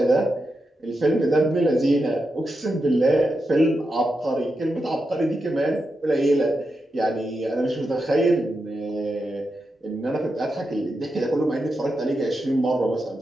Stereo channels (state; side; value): normal; both; correlation 0.87